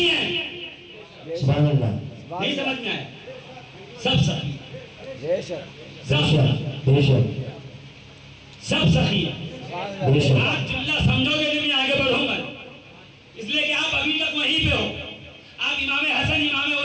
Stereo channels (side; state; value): both; identical; correlation 1.00